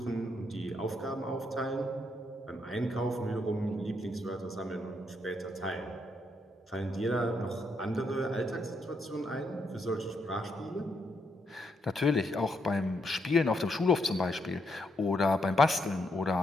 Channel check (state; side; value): normal; both; correlation 0.77